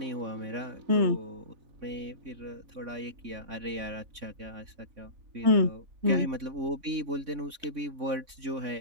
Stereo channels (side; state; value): left; late; 3.6 ms